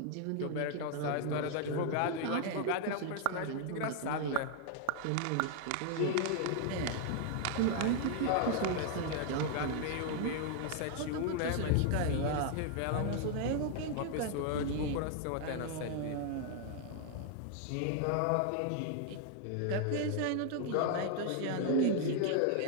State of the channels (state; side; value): different; both; correlation 0.00